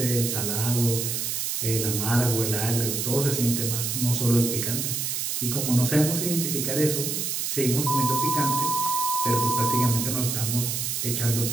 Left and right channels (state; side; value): noise; right; hiss, 1 dB below the sound